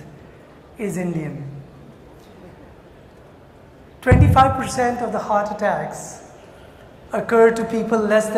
is Indian. 25% of the heart attacks occur to people less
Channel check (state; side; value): identical; both; correlation 1.00